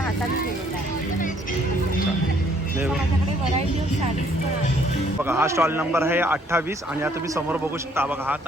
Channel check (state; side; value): normal; both; correlation 0.64